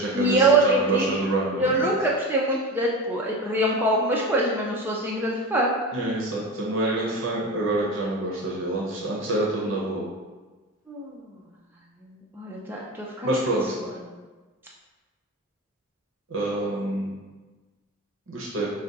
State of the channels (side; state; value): both; normal; correlation 0.26